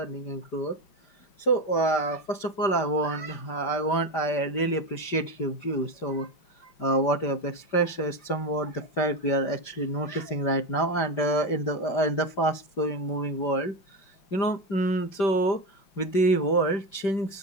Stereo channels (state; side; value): late; right; 5.1 ms